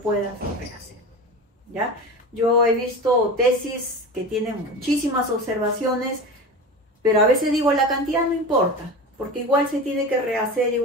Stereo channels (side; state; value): both; normal; correlation 0.29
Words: rehacer. ¿Ya? Yo he visto tesis que tienen muchísimas observaciones, pero a veces digo, la cantidad no importa, porque igual se tiene que rehacer,